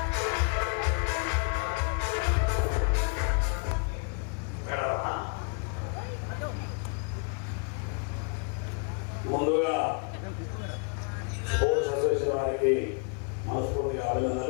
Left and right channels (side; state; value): right; quieter; 37.8 dB